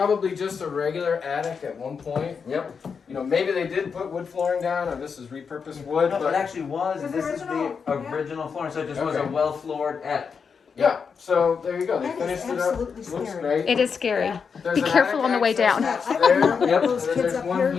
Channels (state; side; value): quieter; right; 5.9 dB